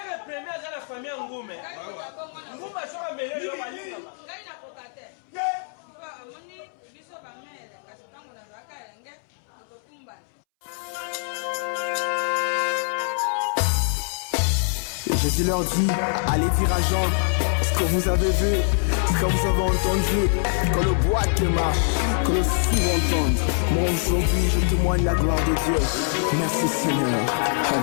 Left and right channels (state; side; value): silent; right; 62 dB below the other